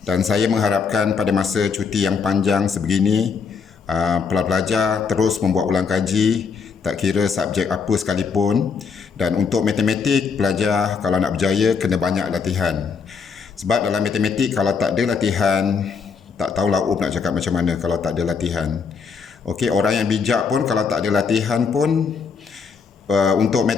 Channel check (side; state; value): right; quieter; 5.7 dB